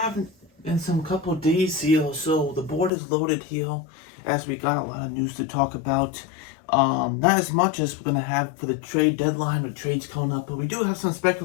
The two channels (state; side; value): drops out; right; at 2.9 s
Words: in some couple of days here, so the board is loaded here, as we got a lot of news to talk about. Not as much as we're gonna have for the trade deadline or trades coming up, but we do have some